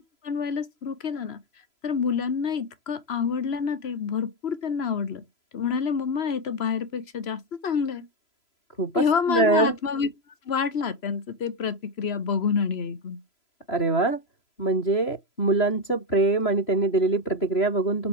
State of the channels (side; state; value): right; late; 3.0 ms